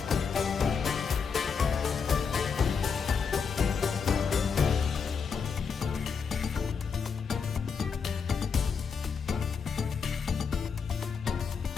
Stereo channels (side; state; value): right; quieter; 5.9 dB